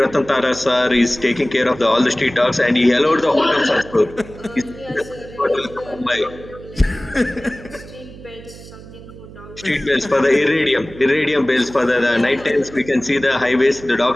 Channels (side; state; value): right; noise; hum, 17 dB below the sound